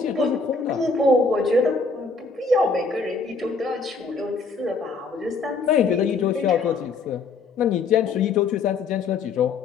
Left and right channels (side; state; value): right; quieter; 4.4 dB